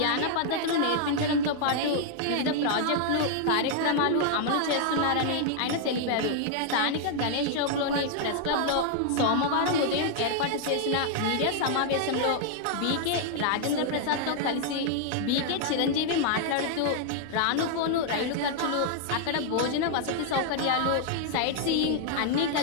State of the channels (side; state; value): both; different; correlation 0.00